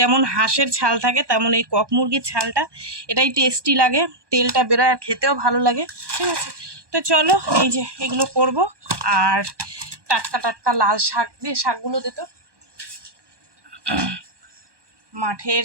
হাঁসের ছাল থাকে তেমন এই কক মুরগির ছালটা, এটাই টেস্টি লাগে, তেলটা বেরোয় আর খেতেও ভালো লাগে, ঠিক আছে? তো চলো, এই যে এগুলো করব। আর টাটকা টাটকা লাল শাক দিয়ে, শাকগুলো দিত মাঠের।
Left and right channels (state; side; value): late; left; 1.2 ms